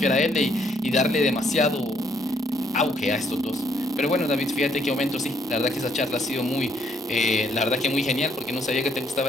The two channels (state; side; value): normal; both; correlation 0.69